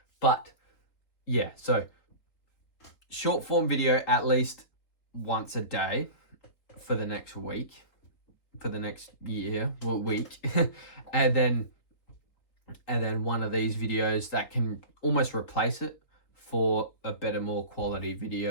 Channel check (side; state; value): right; late; 4.0 ms